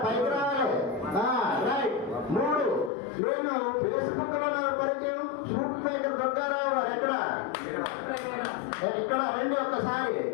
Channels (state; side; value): drops out; right; at 2.9 s